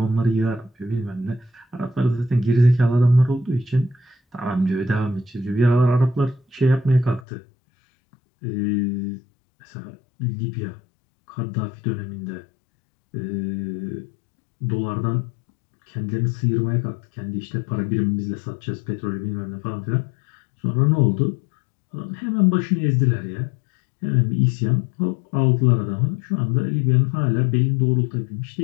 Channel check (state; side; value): drops out; right; at 7.2 s